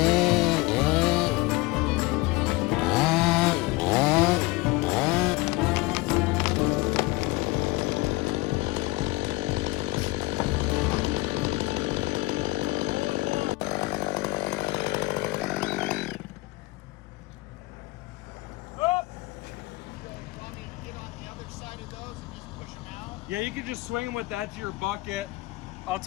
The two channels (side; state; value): right; quieter; 22.0 dB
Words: Yeah, you can just swing them with that to your bucket. I'll